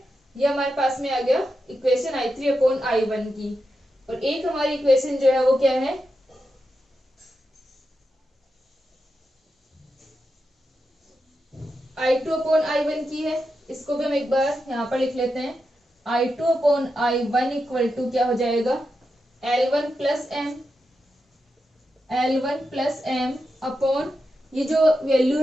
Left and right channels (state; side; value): normal; both; correlation 0.88